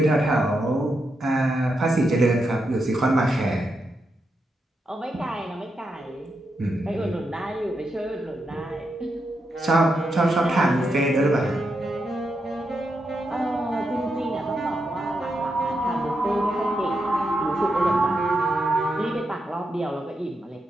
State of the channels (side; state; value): both; normal; correlation 0.84